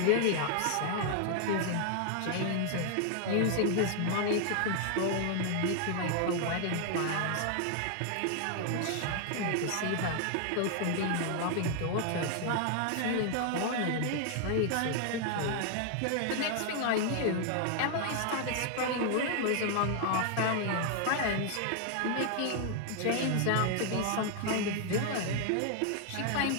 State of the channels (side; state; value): both; different; correlation 0.00